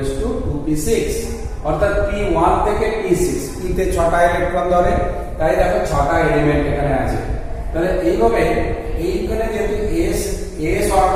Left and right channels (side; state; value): both; identical; correlation 1.00